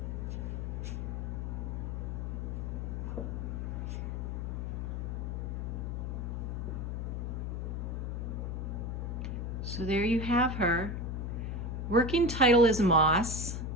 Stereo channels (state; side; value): noise; left; hum, 2 dB below the sound